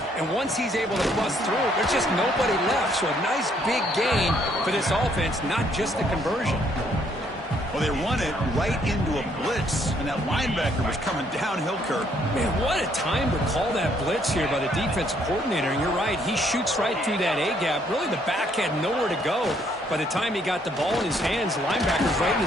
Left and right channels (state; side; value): normal; both; correlation 0.68